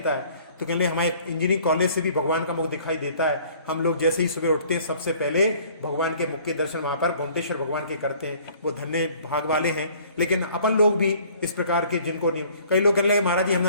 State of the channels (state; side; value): inverted; both; correlation -0.55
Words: है। तो कहने हमारे इंजीनियरिंग कॉलेज से भी भगवान का मुख दिखाई देता है। हम लोग जैसे ही सुबह उठते हैं सबसे पहले भगवान के मुख के दर्शन वहां पर गोमटेश्वर भगवान के करते हैं। वो धन्य भाग वाले हैं। लेकिन अपन लोग भी इस प्रकार के, जिनको नहीं, कई लोग कहने लगे महाराज जी